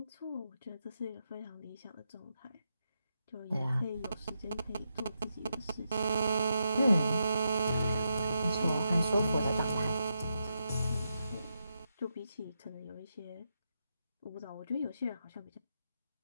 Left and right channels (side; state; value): both; inverted; correlation -0.84